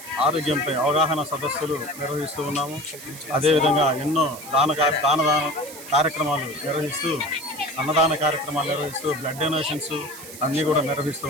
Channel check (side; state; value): right; noise; hiss, 14 dB below the sound